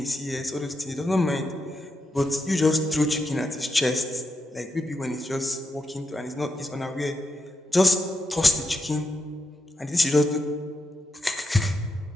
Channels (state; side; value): normal; both; correlation 0.84